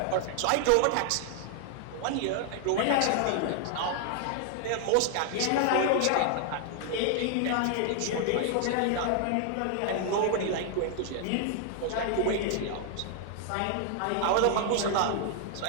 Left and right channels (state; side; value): different; both; correlation 0.00